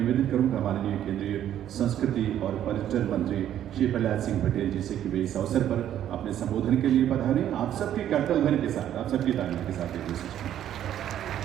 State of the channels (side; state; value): left; quieter; 11.0 dB